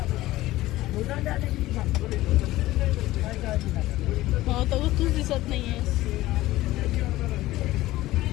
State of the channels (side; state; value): right; quieter; 16.8 dB